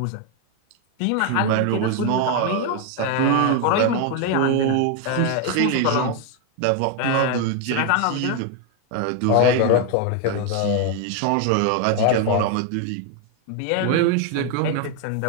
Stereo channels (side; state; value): both; different; correlation 0.01